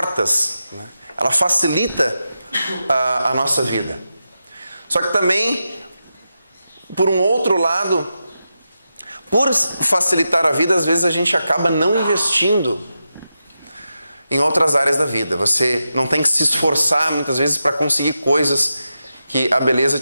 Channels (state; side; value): inverted; both; correlation -0.89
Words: né? Ela facilita a nossa vida. Só que também, por um outro lado, por facilitar a vida, às vezes a gente acaba não investindo em outras áreas da vida. Você não tem que se esforçar muitas vezes para conseguir coisas que a beleza